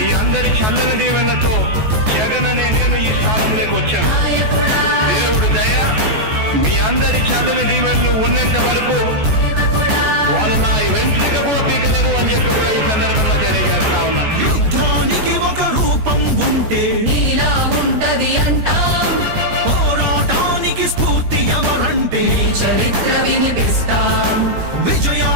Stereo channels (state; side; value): late; left; 14 ms